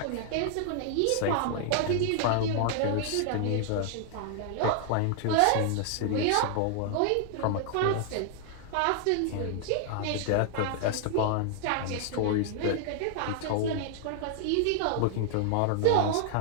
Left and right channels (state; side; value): different; both; correlation 0.00